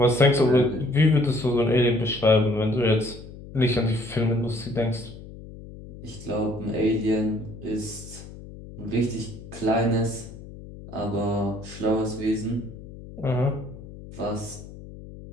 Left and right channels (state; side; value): noise; left; hum, 15 dB below the sound